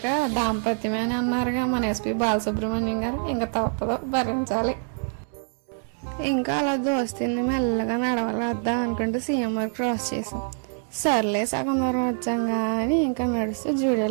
దాంపత్యమే అని అన్నారుగా మన SP బాలసుబ్రహ్మణ్యం గారు. ఇంకా తప్పదు, భరించాలి. ఇంకా అలా దోస్తుంది మెల్లగా నడవలేద్దాం అనుకుంటూ CMR క్రాస్ చేసాం. సర్లే సగం దూరం వచ్చాం కానీ ఇంకా నడుస్తూ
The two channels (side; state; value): left; silent; 61 dB below the other